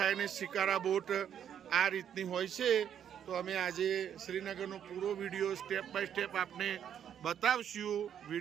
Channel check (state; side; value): quieter; left; 9.2 dB